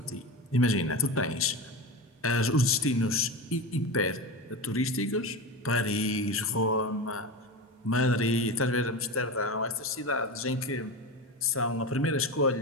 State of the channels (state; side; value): normal; both; correlation 0.23